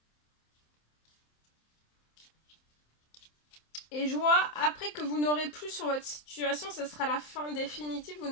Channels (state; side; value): late; right; 27 ms